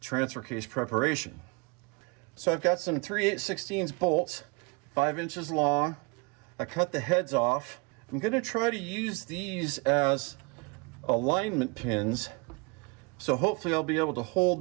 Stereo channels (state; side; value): quieter; left; 29.8 dB